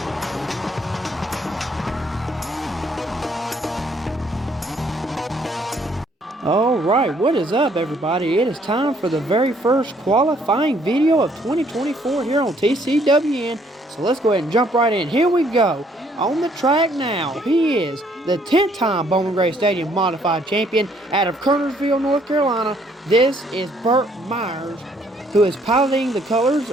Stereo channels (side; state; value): both; normal; correlation 0.66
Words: Alright, what is up everybody? It is time for the very first qualifying video of 2024 here on TCWN. So let's go ahead and jump right in. Here we go. On the track now, he is the 10th time Bowman Gray Stadium Modified Champion out of Kernersville, North Carolina. This is Burt Myers, who is piloting the colors